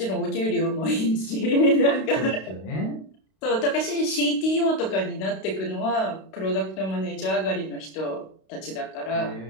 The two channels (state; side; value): late; right; 32 ms